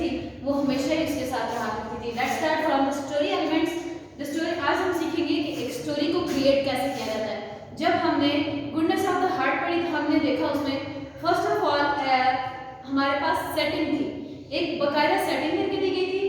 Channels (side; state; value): both; identical; correlation 1.00